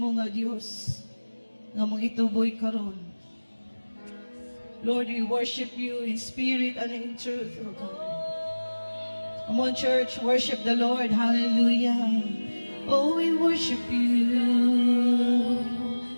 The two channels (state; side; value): inverted; both; correlation -1.00